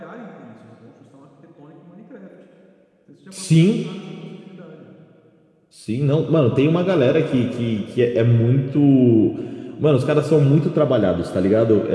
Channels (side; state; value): both; identical; correlation 1.00